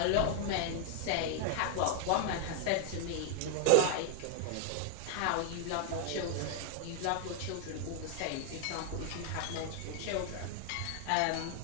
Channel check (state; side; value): different; both; correlation 0.00